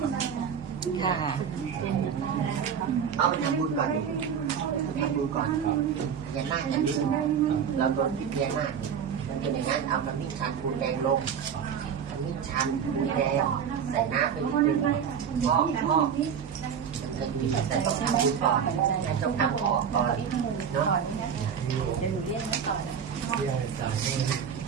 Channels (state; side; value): quieter; left; 7.6 dB